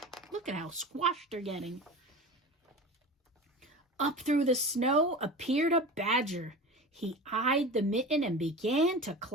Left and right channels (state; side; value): normal; both; correlation 0.32